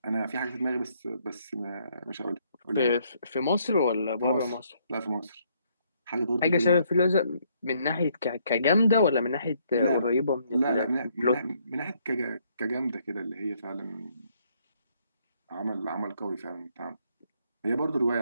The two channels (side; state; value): both; inverted; correlation -0.70